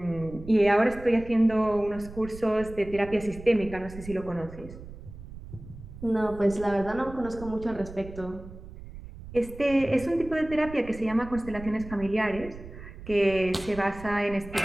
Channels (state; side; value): noise; right; rumble, 14 dB below the sound